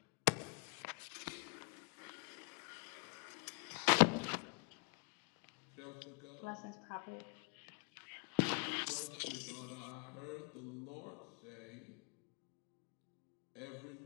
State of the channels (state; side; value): quieter; right; 35.5 dB